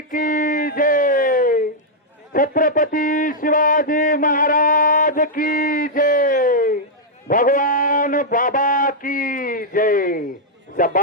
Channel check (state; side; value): normal; both; correlation -0.06